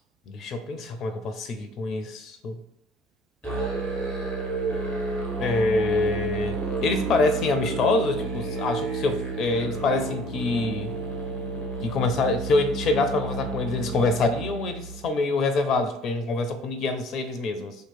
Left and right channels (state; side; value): normal; both; correlation 0.52